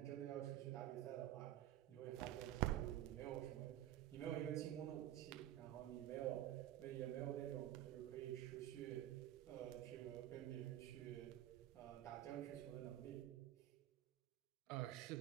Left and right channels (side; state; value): left; quieter; 13.1 dB